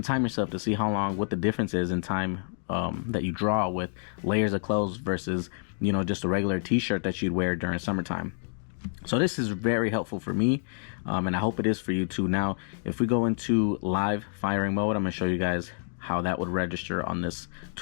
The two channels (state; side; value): silent; right; 59 dB below the other